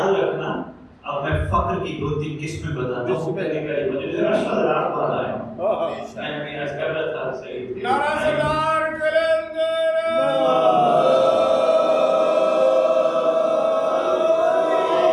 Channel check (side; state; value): both; identical; correlation 1.00